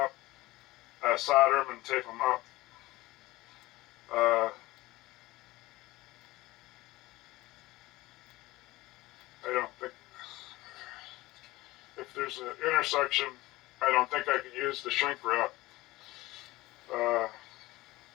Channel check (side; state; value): right; quieter; 19.0 dB